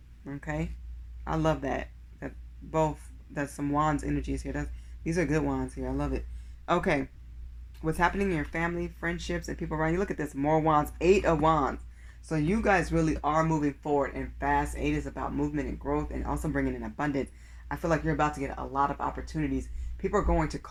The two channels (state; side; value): identical; both; correlation 1.00